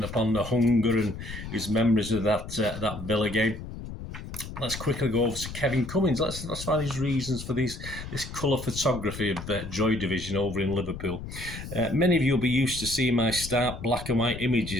upon the hunger and his memories of that Villa game. Let's quickly go over to Kevin Cummins. Let's find his reasons for this colour photography of Joy Division over in Liverpool. Many of you will be used to seeing my stark black and white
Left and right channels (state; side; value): noise; left; rumble, 10 dB below the sound